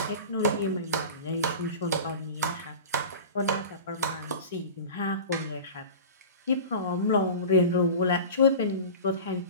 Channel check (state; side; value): inverted; both; correlation -0.35